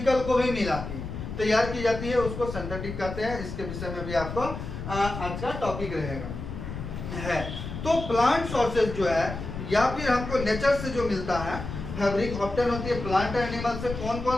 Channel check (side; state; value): left; noise; rumble, 7 dB below the sound